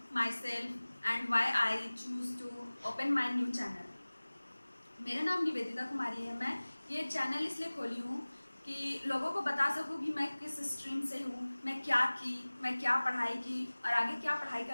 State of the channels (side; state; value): both; inverted; correlation -1.00